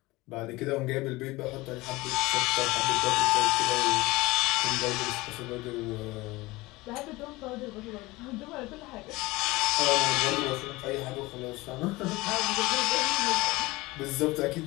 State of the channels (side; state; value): right; quieter; 21.0 dB